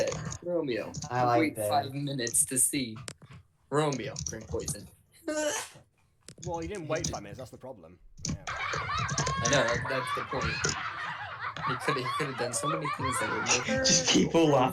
Romeo. I like Wait that. 5 minutes to see. Romeo. Drink poison. Well, you didn't wait 5 minutes, that's the problem. Yeah. I know, that's the point. He could have done so many things that would make Just people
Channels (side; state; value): both; identical; correlation 1.00